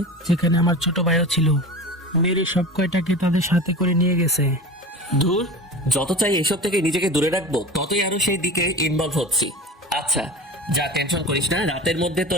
যেখানে আমার ছোট ভাইও ছিল। মেরে সব কয়টাকে তাদের সাথে করে নিয়ে গেছে। ধুর, যত চাই এসব থেকে নিজেকে দূরে রাখবো ততই আরো সেই দিকে ইনভলভ হচ্ছি। আচ্ছা যা, টেনশন করিস না, রাতের মধ্যে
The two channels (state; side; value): normal; both; correlation 0.33